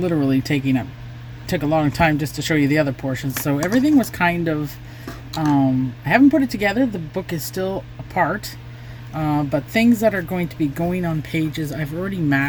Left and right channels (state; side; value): identical; both; correlation 1.00